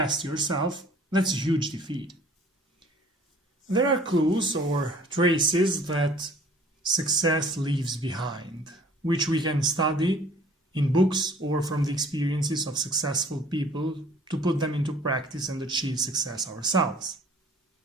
yourself, that's a huge defeat. There are clues or traces that success leaves behind, which we can study in books or from the experiences of successful people to put them into practice and achieve success ourselves.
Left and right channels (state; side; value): normal; both; correlation 0.52